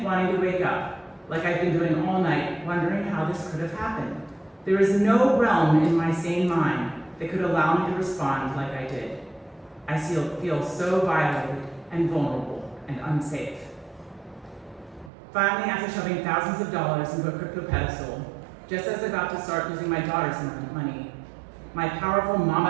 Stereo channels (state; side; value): drops out; left; at 15.1 s